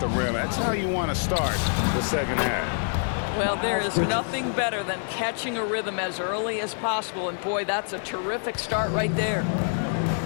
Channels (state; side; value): silent; right; 61 dB below the other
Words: rim. That's how you want to start the second half. Well, there is nothing better than catching a rhythm as early as possible. And boy, that's a terrific start right there.